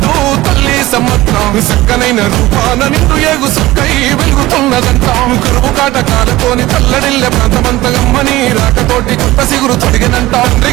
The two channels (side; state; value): left; quieter; 17.9 dB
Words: తల్లి సమ్మత్రం చక్కనైన రూపాన నిండు ఏగు సుక్కై వెలుగుతున్నదంటాం కరువు కాటకాలతోని తల్లడిల్లె ప్రాంతమంత గమ్మని రాకతోటి కొత్త సిగురు తొడిగినంట